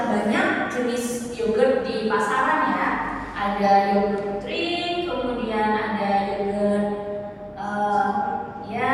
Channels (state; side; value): identical; both; correlation 1.00